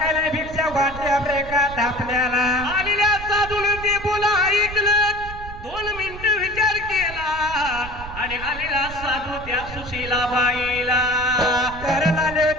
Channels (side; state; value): right; noise; rumble, 12 dB below the sound